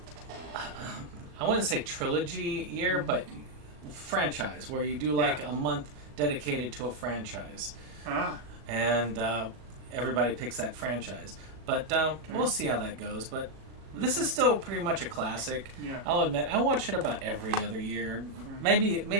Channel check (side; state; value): left; late; 37 ms